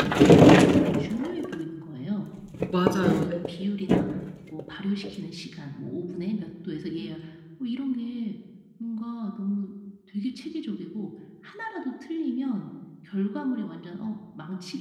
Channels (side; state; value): both; identical; correlation 1.00